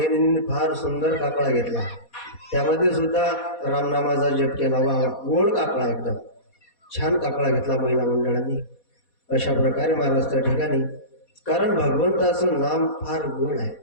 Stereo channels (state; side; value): late; right; 4.2 ms